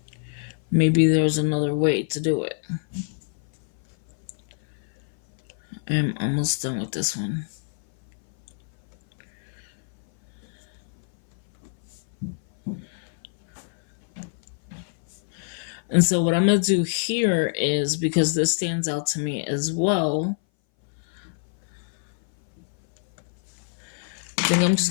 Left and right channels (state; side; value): silent; right; 58 dB below the other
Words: Maybe there's another way to do it. I'm almost done with this one. And so what I'm going to do here is, because this stands out to me as well, I think I'm just